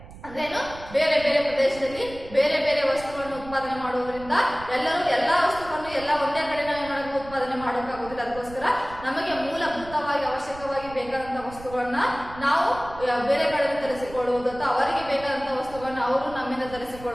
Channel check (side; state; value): right; noise; rumble, 17 dB below the sound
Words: ಅಂದ್ರೇನು? ಬೇರೆ ಬೇರೆ ಪ್ರದೇಶದಲ್ಲಿ ಬೇರೆ ಬೇರೆ ವಸ್ತುಗಳನ್ನು ಉತ್ಪಾದನೆ ಮಾಡುವುದರಿಂದ ಎಲ್ಲಾ ವಸ್ತುಗಳನ್ನು ಒಂದೇ ಕಡೆ ನಾವು ಉತ್ಪಾದನೆ ಮಾಡೋಕ್ಕಾಗೋದಿಲ್ಲ. ಅದಕ್ಕೋಸ್ಕರ ನಮಗೆ ಮೂಲಭೂತವಾಗಿ ಅವಶ್ಯಕವಾಗಿ ಬೇಕಾದಂತಹ ವಸ್ತುಗಳನ್ನ ನಾವು ಬೇರೆ ಕಡೆ ತರಿಸಿಕೊಳ್ಳುವುದು ಅಥವಾ ಅವರಿಗೆ ಬೇಕಾದಂತಹ ವಸ್ತುಗಳನ್ನ ಅವರು ನಮ್ಮಿಂದ